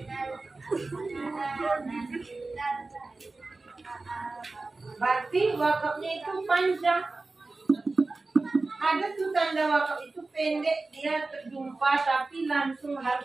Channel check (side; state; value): left; quieter; 3.5 dB